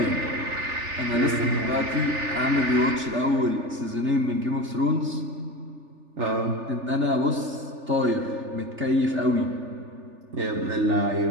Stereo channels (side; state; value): left; late; 3.4 ms